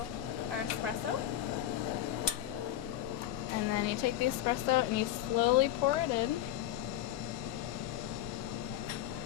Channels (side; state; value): right; quieter; 12.6 dB